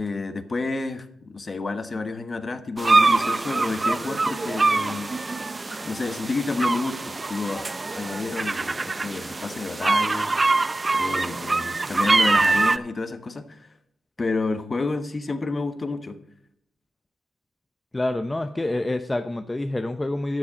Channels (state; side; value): normal; both; correlation 0.94